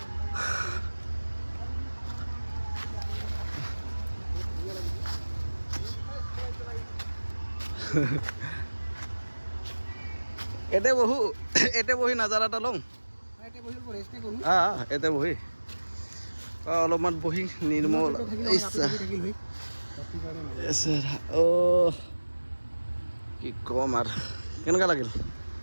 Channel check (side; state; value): both; inverted; correlation -1.00